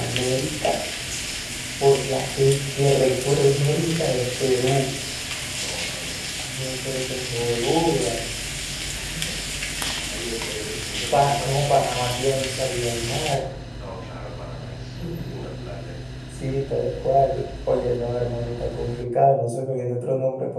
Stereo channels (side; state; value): both; identical; correlation 1.00